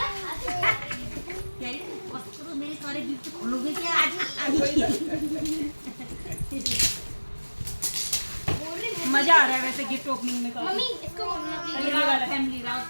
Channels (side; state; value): both; inverted; correlation -1.00